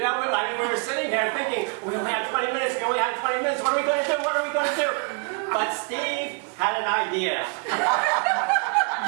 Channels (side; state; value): left; quieter; 37.5 dB